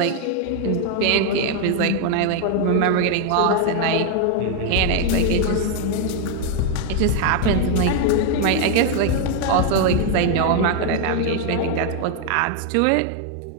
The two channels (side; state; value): both; different; correlation 0.00